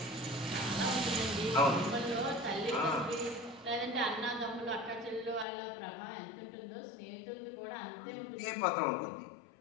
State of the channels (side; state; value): right; drops out; at 5.5 s